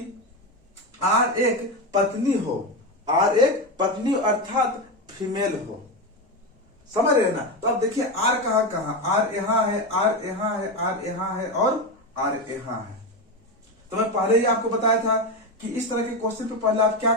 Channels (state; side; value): normal; both; correlation 0.15